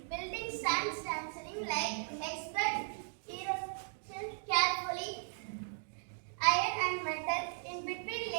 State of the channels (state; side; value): silent; left; digital silence